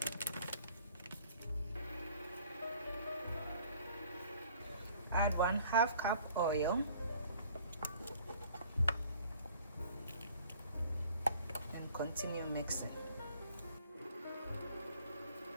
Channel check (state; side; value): inverted; both; correlation -0.55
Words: add 1/2 cup oil, and continue mixing.